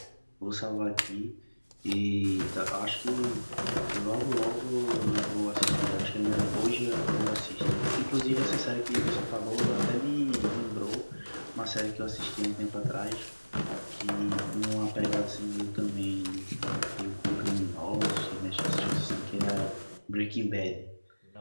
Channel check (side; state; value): both; inverted; correlation -1.00